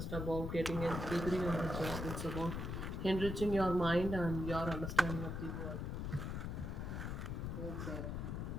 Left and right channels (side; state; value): left; noise; rumble, 3 dB below the sound